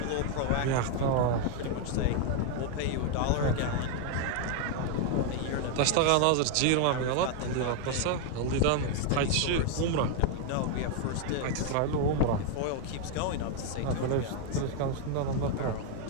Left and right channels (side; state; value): both; different; correlation 0.01